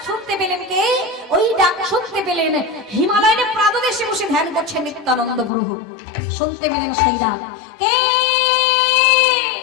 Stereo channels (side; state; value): right; drops out; at 5.5 s